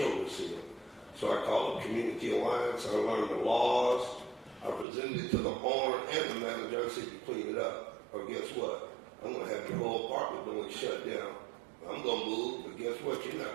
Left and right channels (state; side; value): drops out; left; at 4.9 s